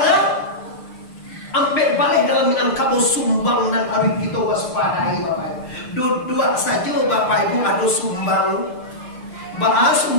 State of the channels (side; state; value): right; late; 6.6 ms